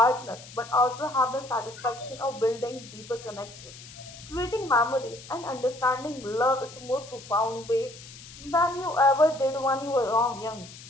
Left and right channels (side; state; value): left; noise; hiss, 17 dB below the sound